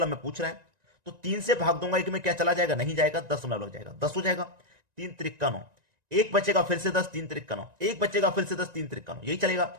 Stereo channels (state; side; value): late; left; 1.9 ms